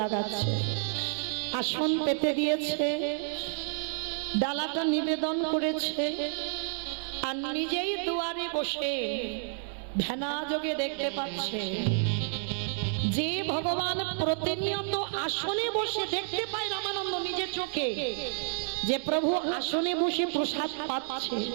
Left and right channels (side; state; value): left; silent; digital silence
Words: লাগাচ্ছে। আসন পেতে দিয়েছে, ডালাটা নিবেদন করেছে, আর নিজেই দুয়ারে বসে ধ্যানাযোগে দেখতে পাচ্ছে যে ভগবান প্রতিনিয়ত আসনে বসে দেখতে পায় রামানন্দ নিজের চোখে যে প্রভু আসনে বসে প্রসাদ পাচ্ছে।